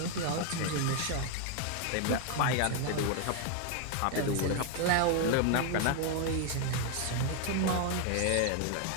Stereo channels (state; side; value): different; both; correlation 0.01